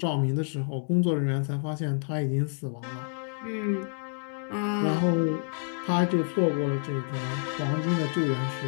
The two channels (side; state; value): right; silent; 59 dB below the other